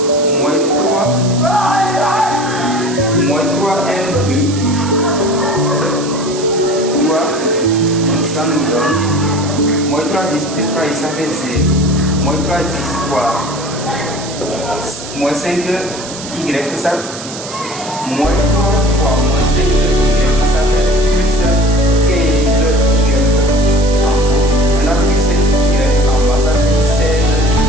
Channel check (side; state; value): right; noise; hiss, 12 dB below the sound